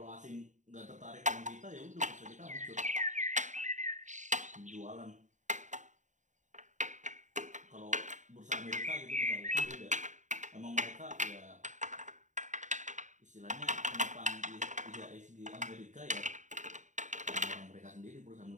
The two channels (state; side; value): late; left; 0.36 ms